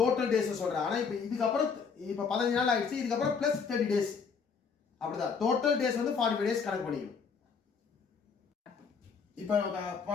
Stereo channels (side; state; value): right; quieter; 5.8 dB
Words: டேஸ் சொல்கிறேன். ஆனால் இப்போ இதுக்கப்புறம் இப்போ 15 நாள் ஆயிடுச்சு, இதுக்கப்புறம் ப்ளஸ் 30 டேஸ் அப்படிதான். டோட்டல் டேஸ் வந்து 45 டேஸ் கணக்கு பண்ணிக்கணும். இப்போ